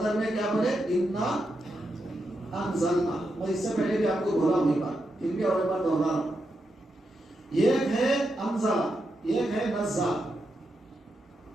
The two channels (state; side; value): normal; both; correlation 0.85